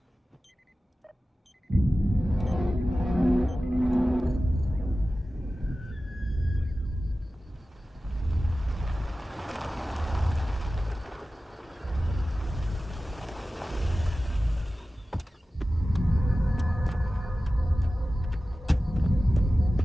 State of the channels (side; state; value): both; normal; correlation 0.95